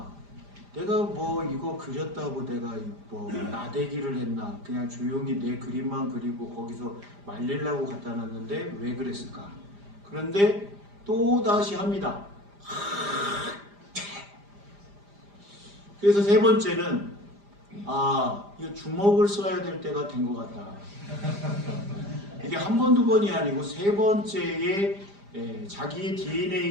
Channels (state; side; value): late; left; 5.0 ms